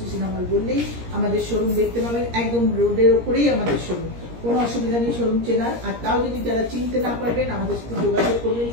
সিনেমা হল বললেই আমাদের শোরুম দেখতে পাবেন। একদম রোডের ওপরেই আমাদের শোরুম, কোনো অসুবিধা নেই শোরুম চেনার। আর তাও যদি যারা চিনতে না পারবেন আমাদের সাথে যোগাযোগ করবেন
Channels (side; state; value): left; late; 17 ms